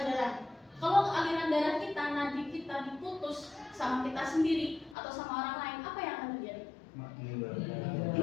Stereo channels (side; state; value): right; drops out; at 5.0 s